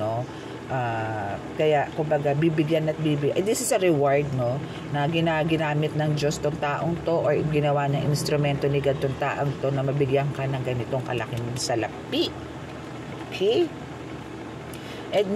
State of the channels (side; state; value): both; identical; correlation 1.00